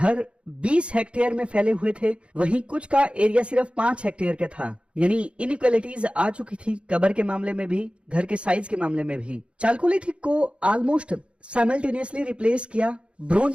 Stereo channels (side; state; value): left; late; 0.059 ms